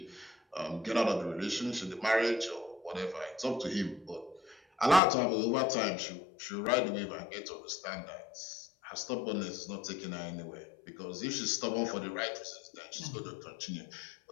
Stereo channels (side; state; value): right; drops out; at 5.0 s